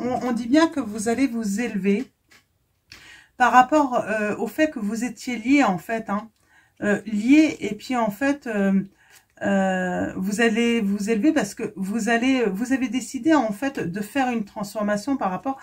dit bien que vous allez vous élever par rapport au fait que vous étiez lié en fait, hein, lié, et puis en fait vous allez vous élever parce que vous avez décidé en fait de faire une transformation par rapport,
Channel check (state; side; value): identical; both; correlation 1.00